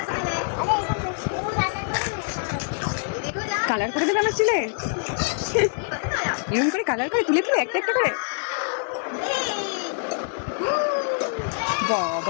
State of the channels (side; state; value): right; silent; 62 dB below the other